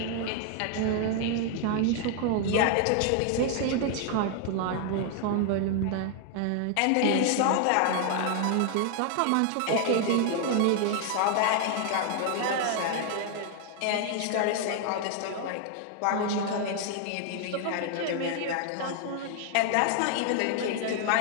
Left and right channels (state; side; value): different; both; correlation 0.00